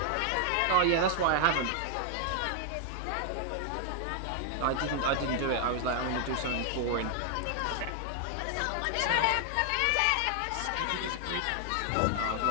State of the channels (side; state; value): both; different; correlation 0.00